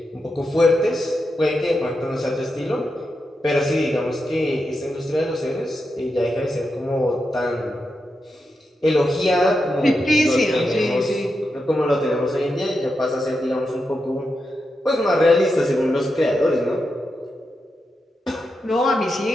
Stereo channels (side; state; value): both; normal; correlation 0.87